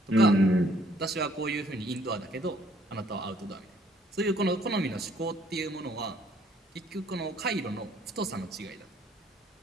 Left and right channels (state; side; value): normal; both; correlation 0.63